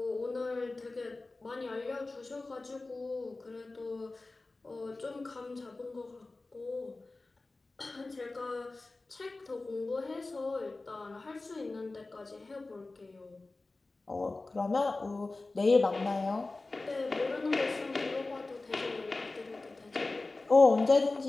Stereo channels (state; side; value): quieter; right; 3.3 dB